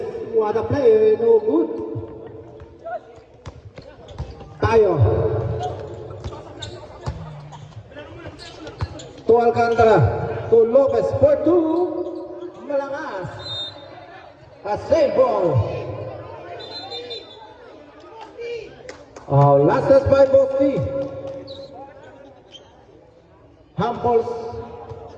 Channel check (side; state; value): both; identical; correlation 1.00